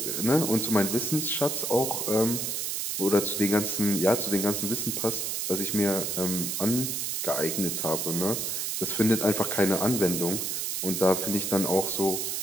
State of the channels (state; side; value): noise; right; hiss, 1 dB below the sound